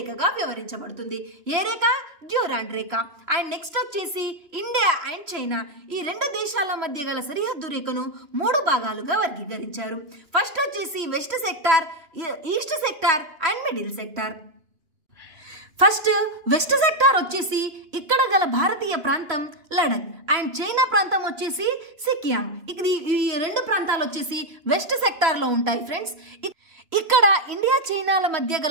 వ్యవహరించబడుతుంది. ఏ రేఖ? డ్యూరాండ్ రేఖ. అండ్ నెక్స్ట్ వచ్చేసి ఇండియా అండ్ చైనా. ఈ 2 దేశాల మధ్య గల సరిహద్దు రేఖను 3 భాగాలుగా వర్గీకరించారు. ఫస్ట్ వచ్చేసి west sector, east sector and middle sector. First west sector వచ్చేసి ఇక్కడ గల భారతీయ ప్రాంతం లడక్ అండ్ చైనా ప్రాంతం వచ్చేసి సికియాంగ్. ఈ 2 ప్రాంతాలు వచ్చేసి వెస్ట్ సెక్టార్ లో ఉంటాయి ఫ్రెండ్స్. ఇక్కడ ఇండియా, చైనాల మధ్య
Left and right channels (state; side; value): late; left; 2.9 ms